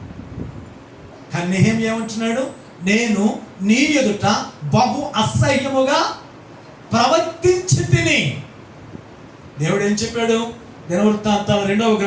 కానీ నెహెమ్యా ఏమంటున్నాడు? నేను నీ ఎదుట బహు అసహ్యముగా ప్రవర్తించి తిని. దేవుడు ఏం చెప్పాడు? దినవృత్తాంతాల 2వ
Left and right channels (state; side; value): identical; both; correlation 1.00